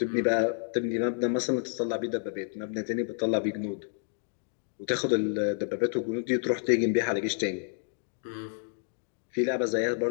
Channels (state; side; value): silent; right; 58 dB below the other